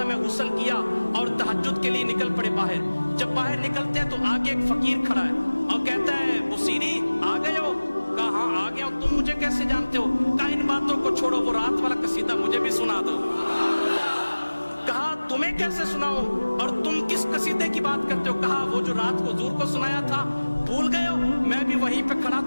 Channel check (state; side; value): inverted; both; correlation -1.00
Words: है, गुस्ल किया और तहज्जुद के लिए निकल पड़े बाहर। जब बाहर निकलते हैं तो आगे एक फकीर खड़ा है और कहता है, बुसीरी आ गए हो? कहा हाँ आ गया हूं। तुम मुझे कैसे जानते हो? कहा इन बातों को छोड़ो, वो रात वाला कसीदा मुझे भी सुना दो। कहा तुम्हें कैसे सुनाओ और तुम किस कसीदे की बात करते हो? कहा वो जो रात को हुजूर को सुनाया था, भूल गए हो? मैं भी वहीं पे खड़ा